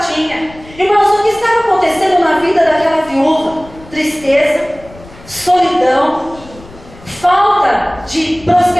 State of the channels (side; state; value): left; noise; rumble, 21 dB below the sound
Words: Irmãos, o que estava acontecendo na vida daquela viúva? Tristeza, solidão, falta de